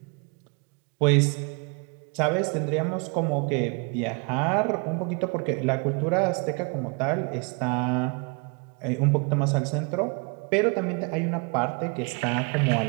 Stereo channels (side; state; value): left; quieter; 33.2 dB